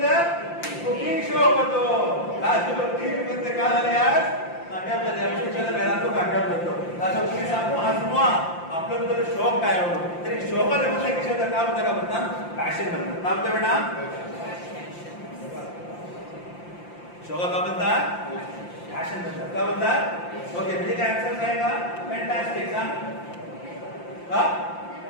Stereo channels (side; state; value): right; late; 5.8 ms